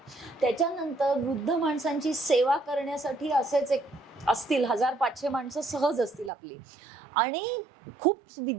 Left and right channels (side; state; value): left; drops out; at 6.3 s